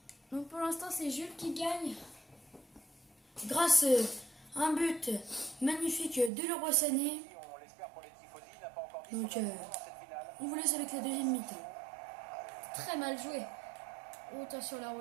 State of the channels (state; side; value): drops out; left; at 6.3 s